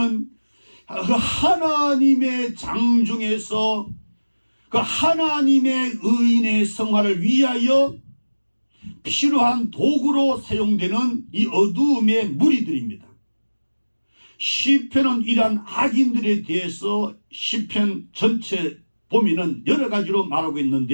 그 하나님의 장중에서 그 하나님의 의인의 성화를 위하여 필요한 도구로 사용되는 이 어두움의 무리들입니다. 시편은 이러한 악인들에 대해서 시편 전체 보면은 여러 가지로 말하고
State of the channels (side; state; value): both; inverted; correlation -1.00